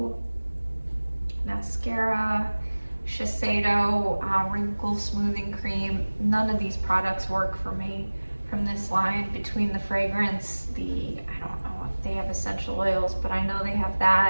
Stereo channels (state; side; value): inverted; both; correlation -1.00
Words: mascara, Shiseido wrinkle smoothing cream. None of these products work for me from this line. Between the fragrance, I don't know if they have essential oils, but I know they have